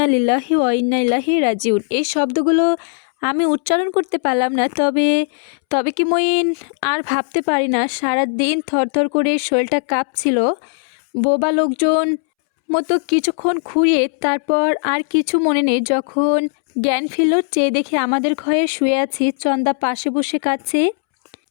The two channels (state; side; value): silent; right; 67 dB below the other